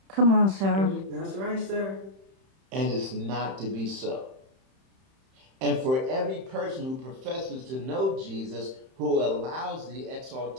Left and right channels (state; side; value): late; left; 31 ms